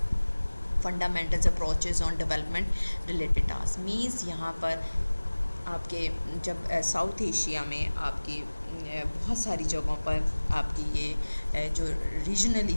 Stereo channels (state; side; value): inverted; both; correlation -1.00